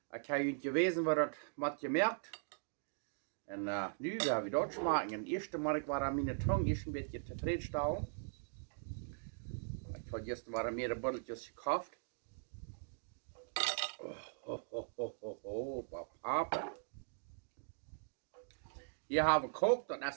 Ik heb je geweten wat dat wat je merkt. En nu gaan we dat smaken. En eerste maar ik war aan mijn tong is een beetje tevreden. Ik had gisteren waren meerdere botteltjes gekauft. Papa. Hier hebben we gekookt, dat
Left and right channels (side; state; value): left; silent; digital silence